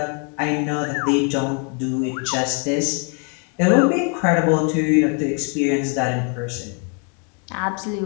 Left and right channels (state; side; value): quieter; right; 37.9 dB